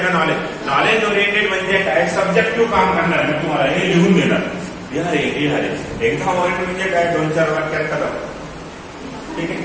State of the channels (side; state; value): both; identical; correlation 1.00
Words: का नॉलेज ओरिएंटेड म्हणजे काय? सब्जेक्टिव्ह काम करणार मी तुम्हाला, हे लिहून देणार, लिहारे. एक्झाम ओरिएंटेड म्हणजे काय? 2-4 वाक्यात करा, ठीक आहे.